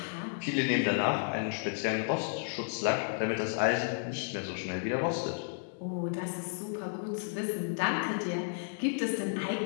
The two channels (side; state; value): right; silent; 56 dB below the other